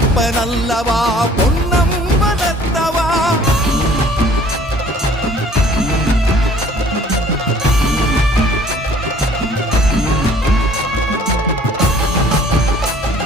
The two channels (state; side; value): normal; both; correlation 0.54